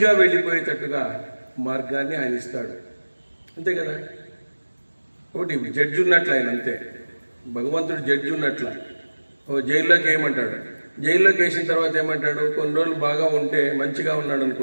వెళ్ళిపోయేటట్టుగా మార్గాన్ని ఆయన ఇస్తాడు. అంతే కదా. ఒకటి జడ్జి ఉన్నట్లు ఆయన, అంతే. భగవంతుడు జడ్జి ఉన్నట్ల. జైల్లోకి ఏమంటాడు, జైల్లోకి వేసిన తర్వాత ఏమంటాడు, కొన్ని రోజులు బాగా ఉంటే, మంచిగా ఉన్నాడు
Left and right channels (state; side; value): inverted; both; correlation -1.00